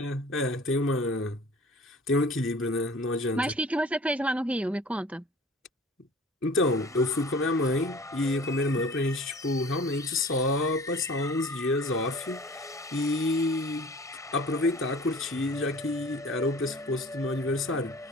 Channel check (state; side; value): normal; both; correlation 0.45